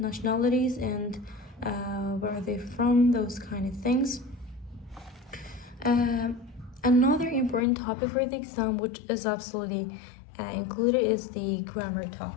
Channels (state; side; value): drops out; right; at 7.7 s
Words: and where are they from? Those kind of things. Another important topic for the exam, which is absolutely included, is the grammar